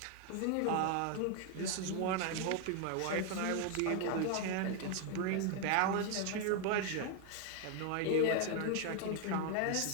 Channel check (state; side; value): different; both; correlation 0.01